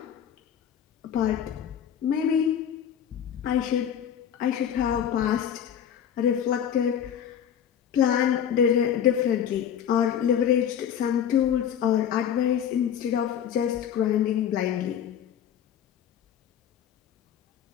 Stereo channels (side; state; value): right; quieter; 9.1 dB